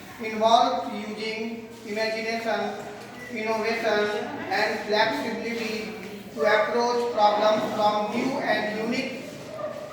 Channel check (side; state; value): both; identical; correlation 1.00